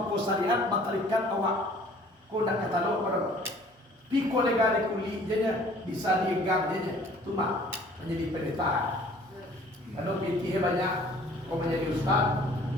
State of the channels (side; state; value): both; normal; correlation 0.53